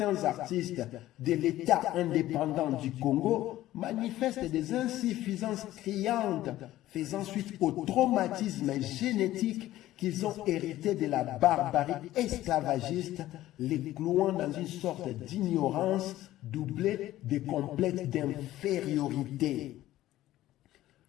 artistes de l'État indépendant du Congo manifestent des insuffisances criantes, faisant suite au traumatisme génétique qu'ils ont hérité de la barbarie esclavagiste, les clouant dans une sorte d'ignorance doublée de complexes d'infériorité.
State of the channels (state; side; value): quieter; right; 14.8 dB